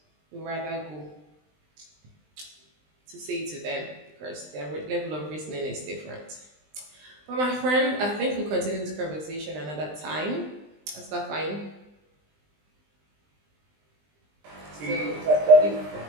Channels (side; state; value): left; late; 20 ms